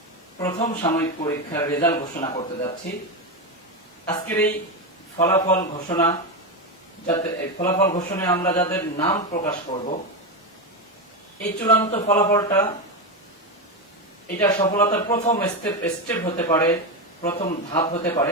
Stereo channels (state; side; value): normal; both; correlation 0.13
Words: প্রথম সাময়িক পরীক্ষার রেজাল্ট ঘোষণা করতে যাচ্ছি। আজকের এই ফলাফল ঘোষণায় আমরা যাদের নাম প্রকাশ করব, এই চূড়ান্ত ফলাফলটা এটা সফলতার প্রথম স্টেপ হতে পারে, প্রথম ধাপ হতে পারে,